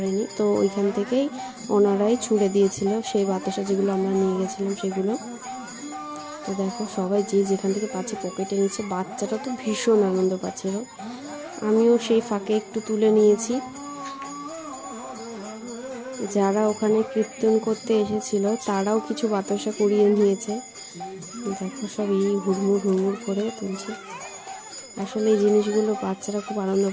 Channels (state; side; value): identical; both; correlation 1.00